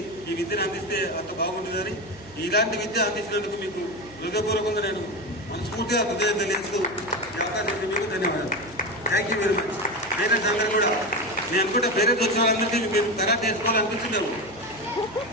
ఈ విద్యను అందిస్తే అంత బాగుంటుందని, ఇలాంటి విద్య అందించినందుకు మీకు హృదయపూర్వకంగా నేను మనస్ఫూర్తిగా హృదయం తెలియజేస్తూ ఈ అవకాశం ఇచ్చి మీకు ధన్యవాదాలు. Thank you very much. Parents అందరూ కూడా, నేను అనుకుంటే పేరెంట్స్ వచ్చిన వాళ్ళందరినీ మీరు కరాటే నేర్చుకోవాలనిపించిందాము.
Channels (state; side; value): noise; right; hum, 22 dB below the sound